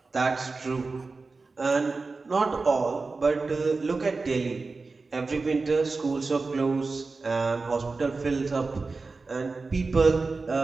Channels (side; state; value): left; quieter; 3.9 dB